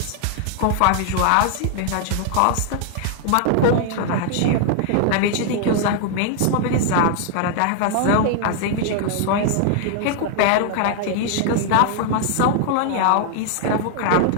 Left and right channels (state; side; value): different; both; correlation 0.00